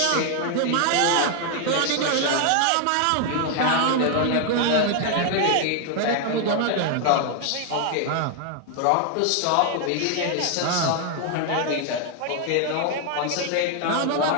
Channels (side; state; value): both; different; correlation 0.00